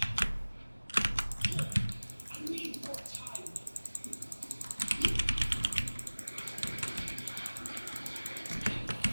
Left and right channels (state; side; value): inverted; both; correlation -1.00